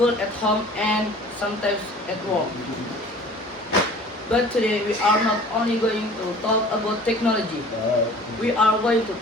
at home, and sometimes at work. But today we are not only going to talk about technology. We are going to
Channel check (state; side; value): normal; both; correlation 0.47